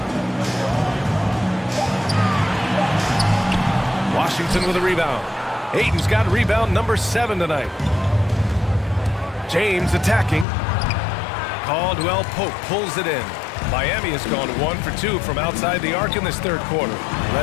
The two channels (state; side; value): drops out; right; at 10.5 s